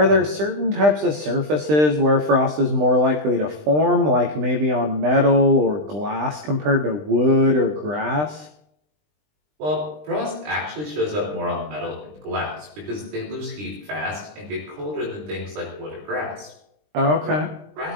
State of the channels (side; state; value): left; late; 20 ms